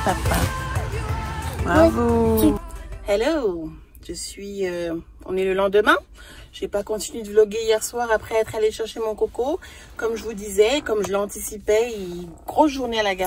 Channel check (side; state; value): both; identical; correlation 1.00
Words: papa. Bravo. Hello, on est le lendemain. J'ai pas continué de vlogger hier soir après être allée chercher mon coco. Comme je vous disais, comme je l'anticipais, grosse journée à la